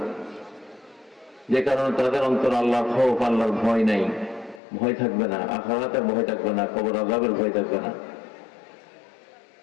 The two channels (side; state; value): right; drops out; at 4.6 s